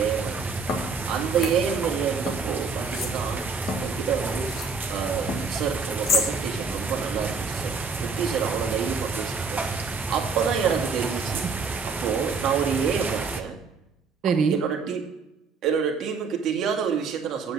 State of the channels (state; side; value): quieter; left; 4.7 dB